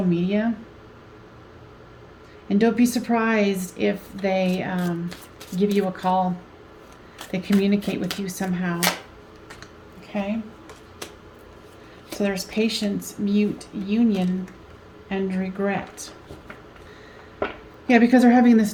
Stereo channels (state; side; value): identical; both; correlation 1.00